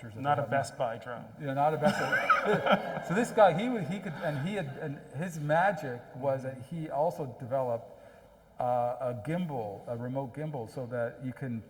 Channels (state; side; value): identical; both; correlation 1.00